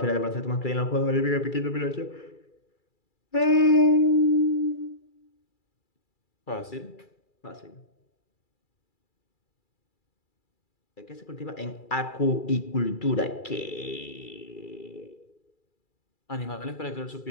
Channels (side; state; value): right; late; 2.3 ms